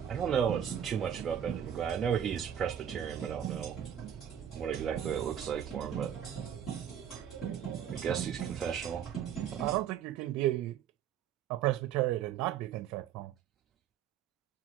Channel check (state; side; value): quieter; left; 9.4 dB